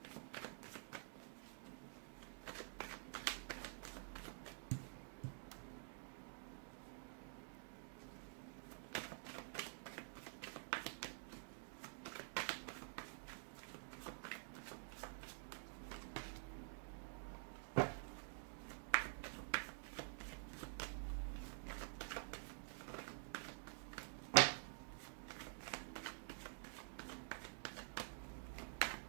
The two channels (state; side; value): silent; left; digital silence